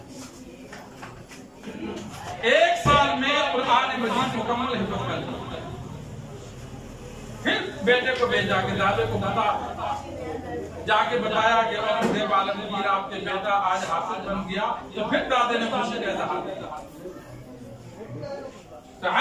1 साल में कुरान मजीद मुकम्मल हिफाजत कर दी। फिर बेटे को भेजा कि दादे को जाके बताया कि औरंगजेब आलमगीर आपके बेटा आज हाफिज बन गया। तो फिर दादे ने खुशी का इजहार किया। तो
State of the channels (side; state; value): both; identical; correlation 1.00